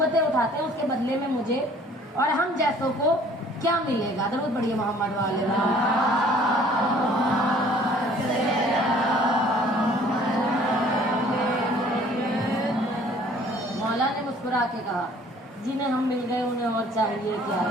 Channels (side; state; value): both; normal; correlation 0.55